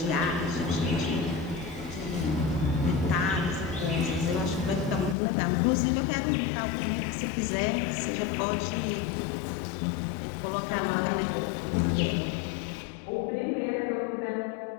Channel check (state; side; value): drops out; right; at 5.2 s